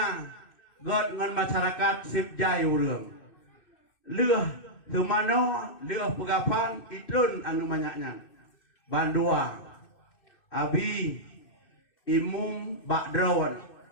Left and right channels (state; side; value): late; right; 2.6 ms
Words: god ngan masyarakat sipjai urang. Leuh semano leuh pegapan itun anu banyak nyan. Bandua abi imum bakdron.